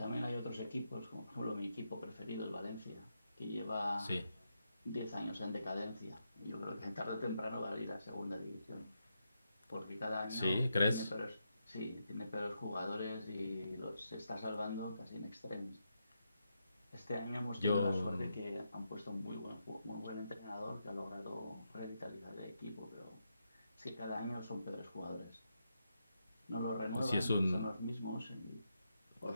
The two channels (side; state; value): both; inverted; correlation -0.83